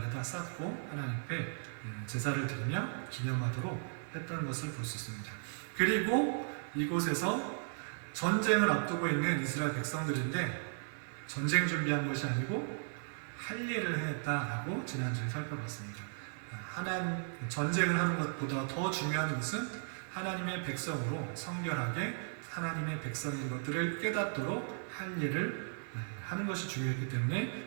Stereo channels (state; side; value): silent; left; digital silence